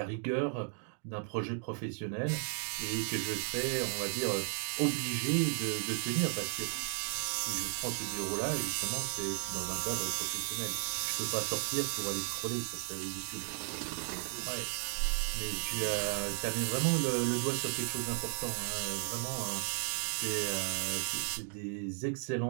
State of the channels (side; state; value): left; silent; 54 dB below the other